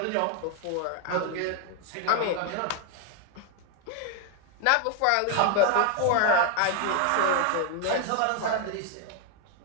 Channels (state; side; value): different; both; correlation 0.01